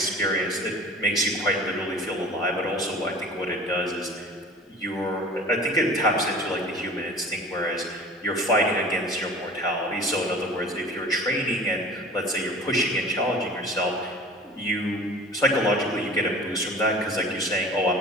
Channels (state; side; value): normal; both; correlation 0.43